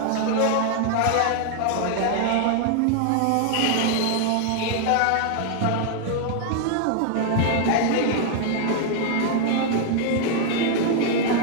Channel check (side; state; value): both; different; correlation 0.00